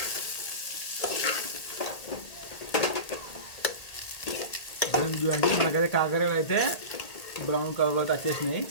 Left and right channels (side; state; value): right; late; 1.8 ms